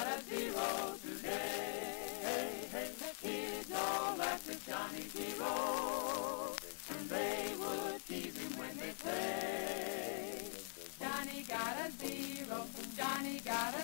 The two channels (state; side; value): silent; right; digital silence